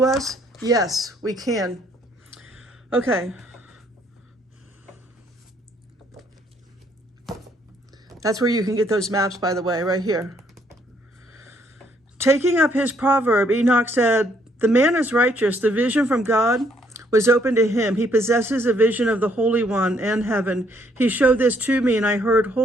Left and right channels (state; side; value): normal; both; correlation 0.68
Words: us? Yes, we can. Okay. That's where you can get those maps, by the way, right here. Taking up his proverb, Enoch said, "The man is righteous. The vision from God was open to him. He possesses a vision of the Holy One and heaven. He showed this to me, and I heard